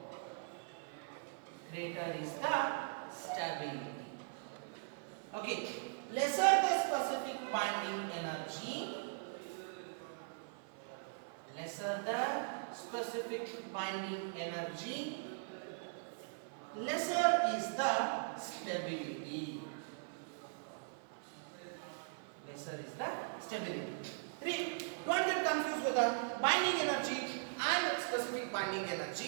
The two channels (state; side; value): silent; left; 51 dB below the other